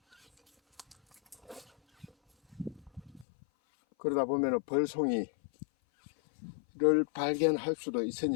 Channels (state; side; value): drops out; right; at 3.2 s